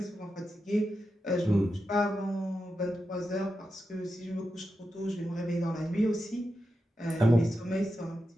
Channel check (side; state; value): both; normal; correlation 0.89